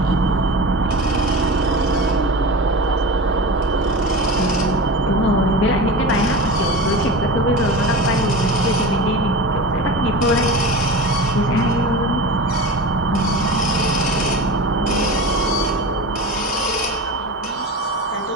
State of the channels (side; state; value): both; normal; correlation 0.30